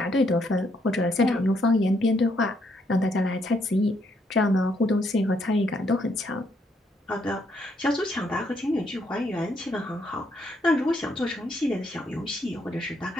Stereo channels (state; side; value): normal; both; correlation 0.73